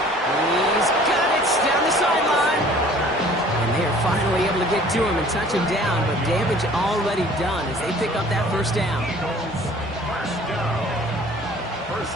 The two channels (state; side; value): normal; both; correlation 0.51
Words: He's got it down the sideline. And they are finally able to get to him and touch him down, but damage already done as they pick up that first down. First down. First